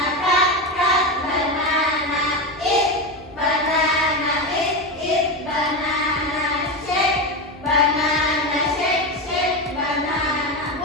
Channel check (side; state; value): both; normal; correlation 0.17